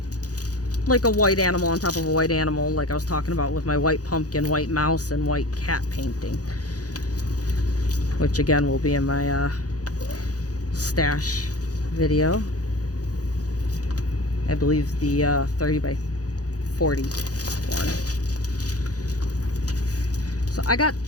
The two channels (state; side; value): late; right; 0.67 ms